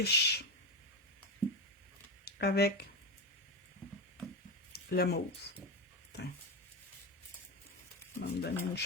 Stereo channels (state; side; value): normal; both; correlation 0.14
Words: avec le mauve. va me donner une